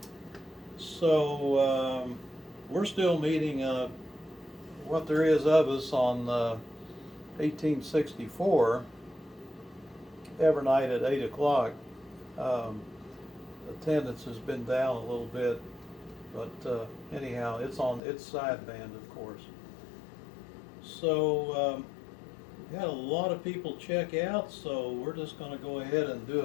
So we're still meeting what there is of us on 1864 every night at 8 o'clock. Attendance has been down a little bit, but anyhow, it's on its sideband, of course. So we had a lot of people check out, so we're just going to go ahead and do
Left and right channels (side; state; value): right; drops out; at 18.0 s